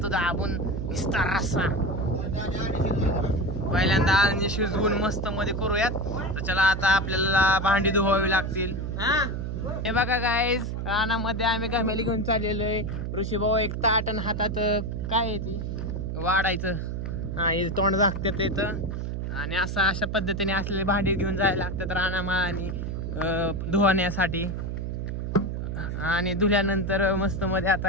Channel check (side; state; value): right; noise; hum, 3 dB below the sound